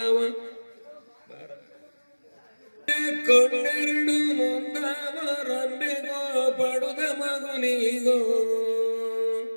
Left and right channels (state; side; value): inverted; both; correlation -1.00